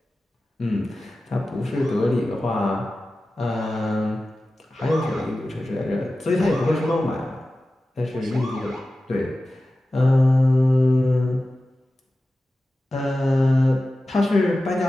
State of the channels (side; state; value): both; normal; correlation 0.95